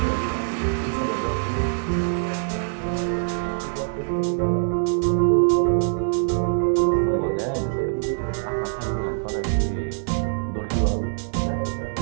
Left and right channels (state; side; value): silent; left; digital silence